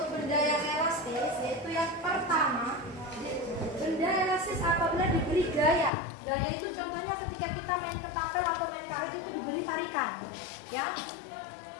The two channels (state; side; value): drops out; right; at 5.9 s